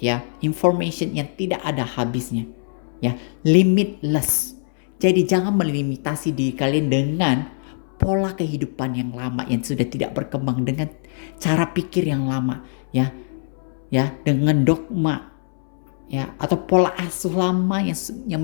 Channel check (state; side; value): silent; right; 64 dB below the other